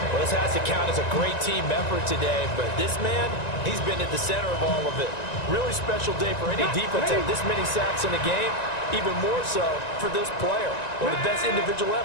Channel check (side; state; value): right; late; 1.9 ms